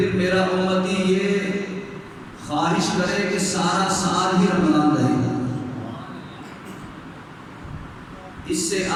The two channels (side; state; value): both; identical; correlation 1.00